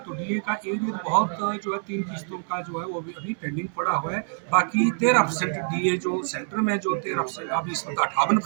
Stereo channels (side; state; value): left; silent; 61 dB below the other